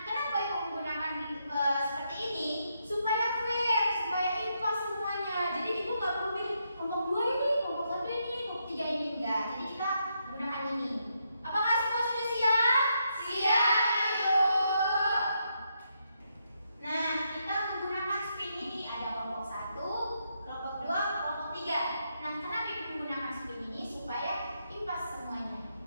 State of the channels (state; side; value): inverted; both; correlation -0.80